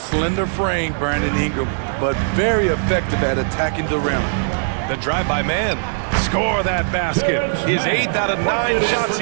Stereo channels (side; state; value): left; silent; digital silence